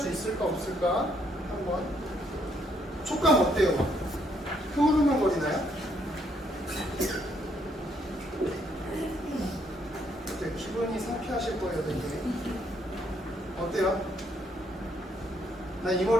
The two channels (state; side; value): normal; both; correlation 0.71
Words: 있을까 없을까 한번. 촉감 어때요? 흐물흐물거리나요? 네, 기분이 상쾌하실 거예요, 되게. 어때요? 나 이